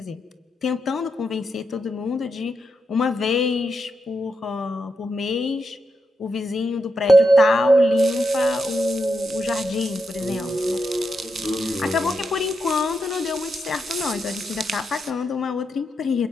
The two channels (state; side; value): normal; both; correlation 0.84